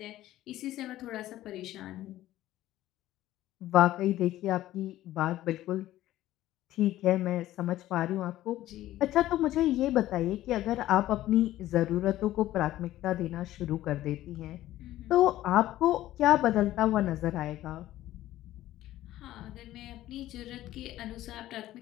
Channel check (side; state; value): right; quieter; 14.5 dB